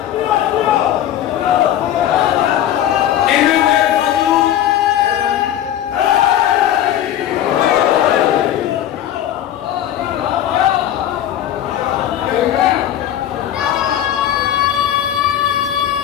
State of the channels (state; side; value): quieter; right; 11.4 dB